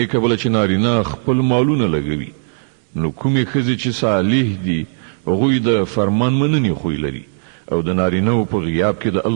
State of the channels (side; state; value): left; silent; digital silence